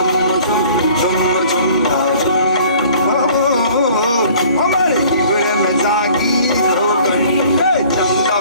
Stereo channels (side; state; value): both; inverted; correlation -0.53